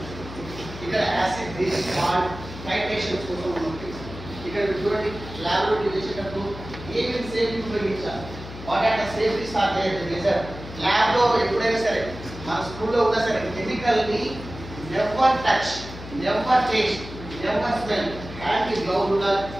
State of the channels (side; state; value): left; noise; hum, 12 dB below the sound